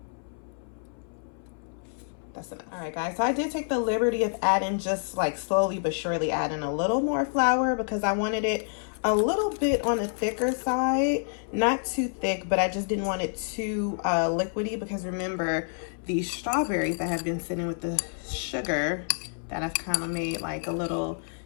that's enough. All right guys, so I did take the liberty of adding, just like slowly but surely adding a little more flour, because I wanted it a little bit on the thicker side, not too thick, but I just didn't want it too liquidy, because remember, these strawberries that have been sitting with the sugar that I've kind of made like a little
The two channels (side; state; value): right; silent; 59 dB below the other